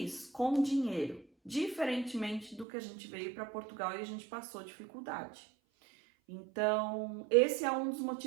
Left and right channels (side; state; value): left; drops out; at 2.7 s